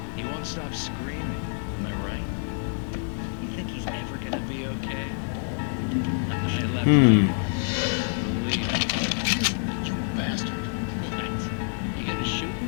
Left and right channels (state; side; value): silent; right; digital silence